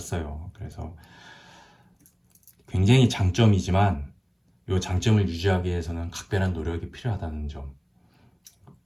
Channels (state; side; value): identical; both; correlation 1.00